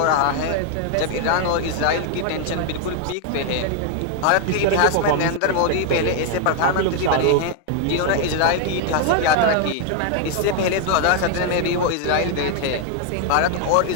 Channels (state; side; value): different; both; correlation 0.00